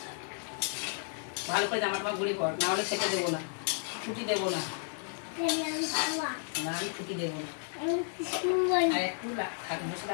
ভালো করে জামাটা গুঁড়ি কর, না হলে খেতে দেবো না, ছুটি দেবো না। না আমি ছুটি দেবো না, আর একটু বসে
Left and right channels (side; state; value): right; silent; 56 dB below the other